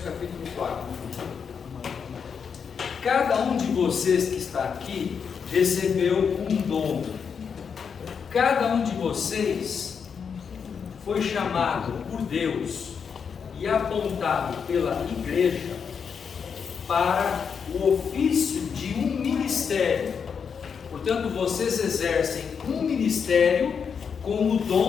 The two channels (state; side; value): quieter; right; 6.5 dB